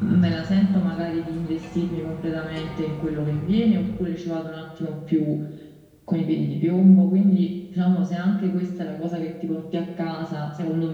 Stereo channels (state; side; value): identical; both; correlation 1.00